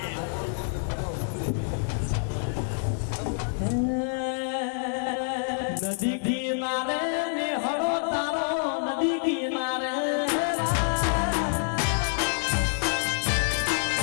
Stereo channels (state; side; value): silent; right; 60 dB below the other